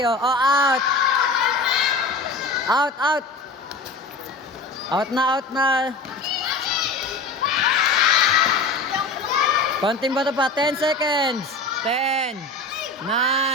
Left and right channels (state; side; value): quieter; right; 3.3 dB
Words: Out. Out, out. Out na, out na. Konting bato pa. 10 seconds. 10, 9,